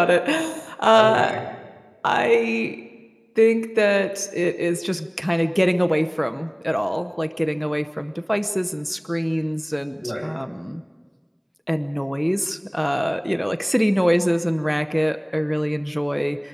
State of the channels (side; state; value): both; identical; correlation 1.00